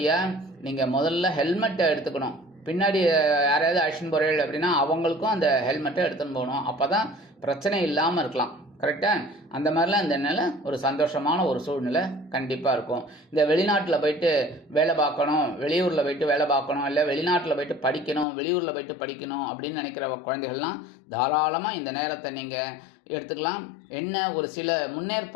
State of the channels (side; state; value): right; drops out; at 18.2 s